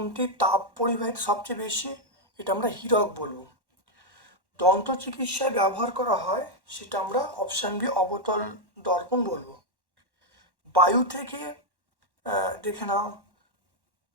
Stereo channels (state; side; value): late; left; 1.1 ms